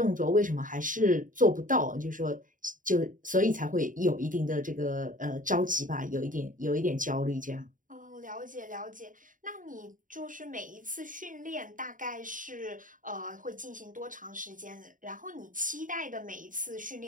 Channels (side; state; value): left; late; 0.38 ms